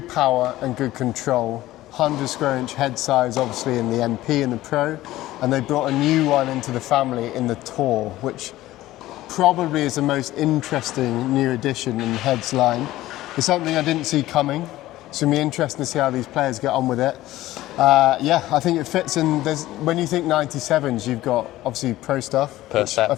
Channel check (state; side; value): quieter; right; 15.9 dB